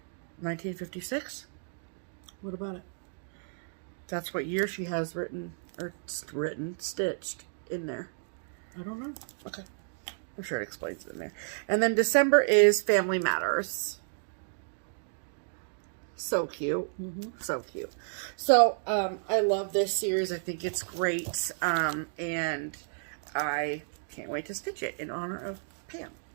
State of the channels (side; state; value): left; silent; digital silence